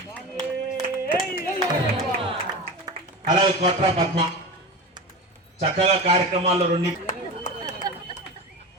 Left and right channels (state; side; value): normal; both; correlation 0.28